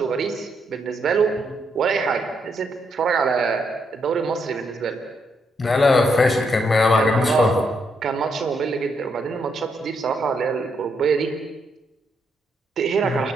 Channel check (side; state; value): both; normal; correlation 0.77